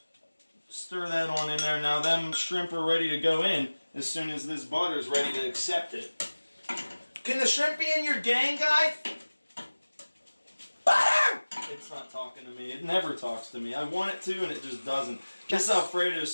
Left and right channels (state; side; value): inverted; both; correlation -1.00